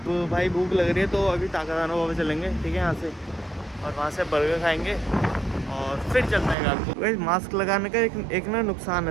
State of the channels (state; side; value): drops out; left; at 6.6 s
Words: भाई भूख लग रही है तो अभी ताकादाना बाबा चलेंगे, ठीक है, यहाँ से, और वहाँ से बर्गर खाएंगे और फिर चलते हैं आपको। भाई मास्क लगाने का एक ना नुकसान